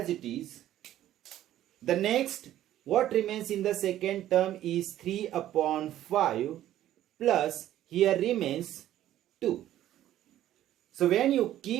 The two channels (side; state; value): left; quieter; 12.8 dB